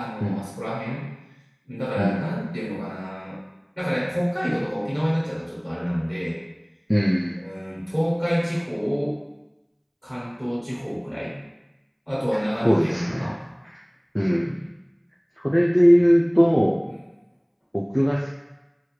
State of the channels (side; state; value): both; identical; correlation 1.00